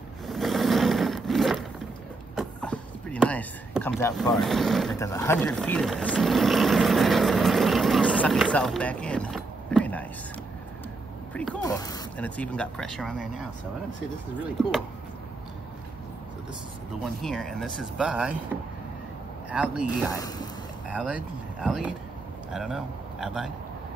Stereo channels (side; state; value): left; quieter; 3.3 dB